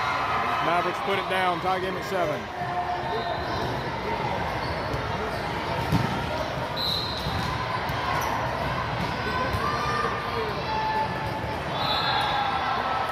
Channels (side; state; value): both; identical; correlation 1.00